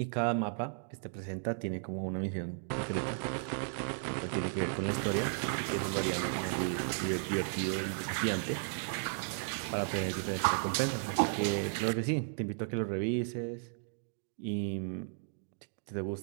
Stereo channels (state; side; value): silent; left; digital silence